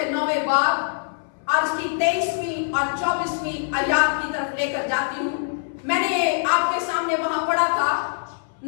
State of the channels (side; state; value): right; silent; 63 dB below the other